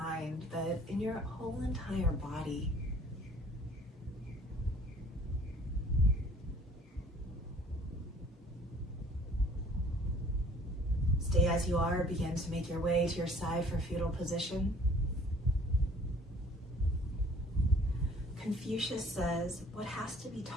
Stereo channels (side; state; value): both; normal; correlation 0.54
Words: but in your whole entire body. Stay as you are. Begin to make your way to your side for fetal position. Confucius says, what has to be